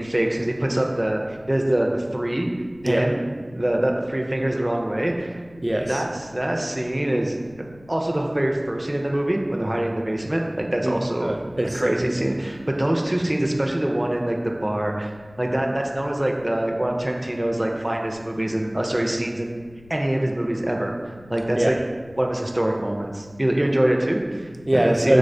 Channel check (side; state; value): left; noise; rumble, 24 dB below the sound